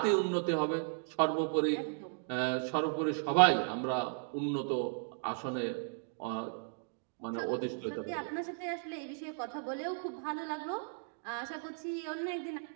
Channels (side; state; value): left; silent; digital silence